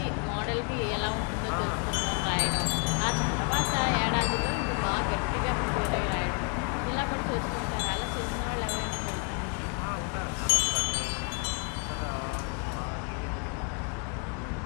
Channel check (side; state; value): right; quieter; 37.0 dB